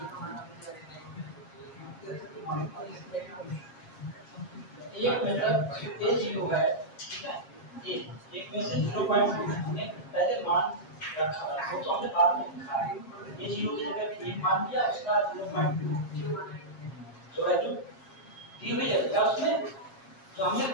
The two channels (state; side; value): late; right; 7.4 ms